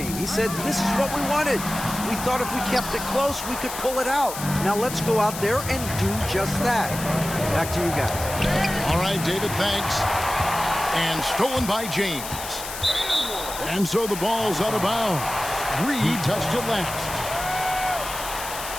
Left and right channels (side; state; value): left; noise; hiss, 9 dB below the sound